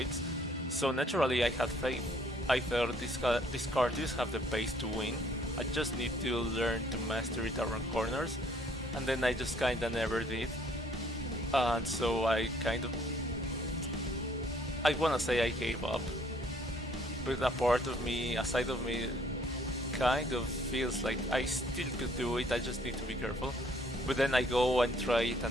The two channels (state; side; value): normal; both; correlation 0.62